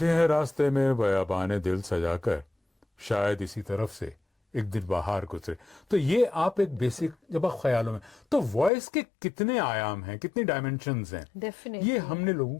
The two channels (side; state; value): right; drops out; at 8.7 s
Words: हैं रास्ते में बयाबाने दिल सजाकर शायद इसी तरफ से एक दिन बाहर गुजरे। तो ये आप एक बेसिक जब आप ख्यालों में, तो वॉइस के कितने आयाम हैं, कितनी डायमेंशंस हैं, डेफिनेटली ये हमने लोगों